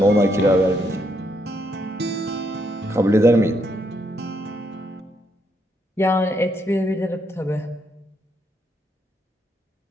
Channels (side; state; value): both; normal; correlation 0.76